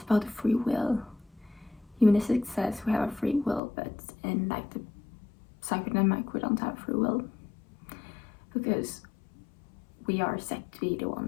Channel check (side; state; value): right; drops out; at 3.6 s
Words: about the free will. Humanistic says we have a free will, but in like the psychodynamic we don't have free will, because we are set to be the